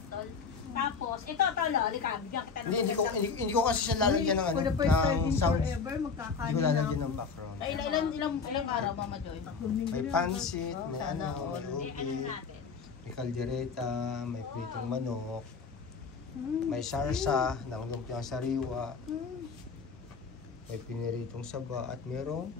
tol. Tapos, ito, tol, halika, bigyan kita ng Hindi ko kasi siya lalagyan ng ano, For the first time in sounds. forever, Hindi magkakanin ko na lalagyan ako. ng background. Ay, ilang araw, Mama Joy? May pansit, may Sana ano, all. may Ano ubi, natin? may kaldereta, may pritong manok, may sarsa ng lumpiang sariwa, may piniritong saba, at mayroong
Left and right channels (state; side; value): quieter; right; 5.3 dB